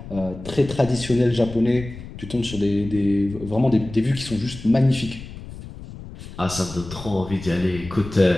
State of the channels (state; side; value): noise; left; rumble, 13 dB below the sound